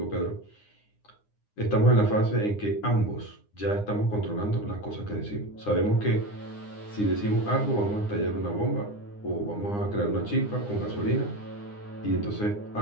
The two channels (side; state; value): right; late; 9.8 ms